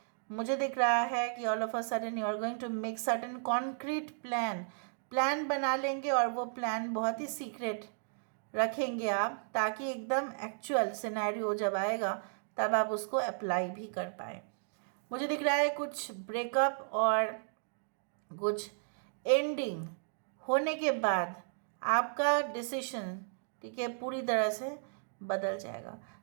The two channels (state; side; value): silent; left; digital silence